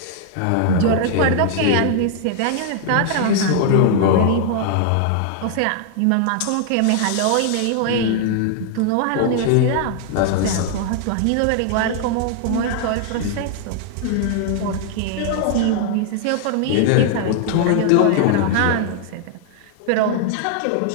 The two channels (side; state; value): both; different; correlation 0.00